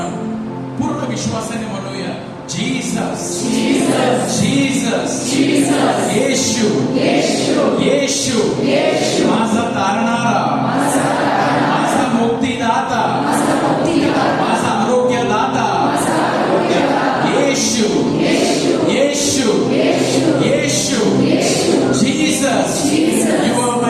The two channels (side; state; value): both; identical; correlation 1.00